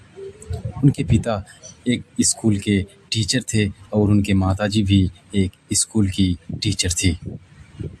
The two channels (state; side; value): identical; both; correlation 1.00